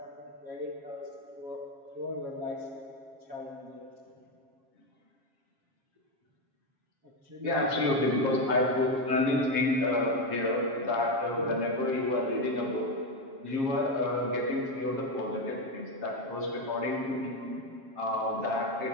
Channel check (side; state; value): left; late; 7.4 ms